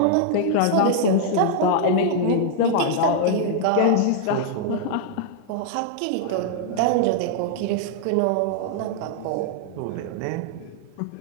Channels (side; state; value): both; different; correlation -0.01